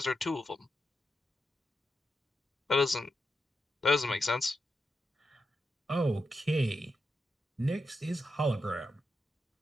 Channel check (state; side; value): normal; both; correlation 0.87